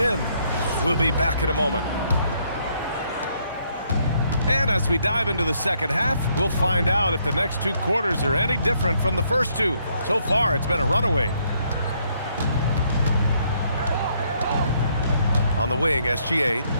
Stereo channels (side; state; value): both; inverted; correlation -0.71